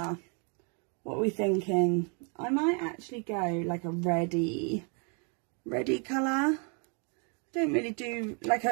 what are we thinking? I might actually go like a reddy colour. Don't really do like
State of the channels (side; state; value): left; quieter; 37.4 dB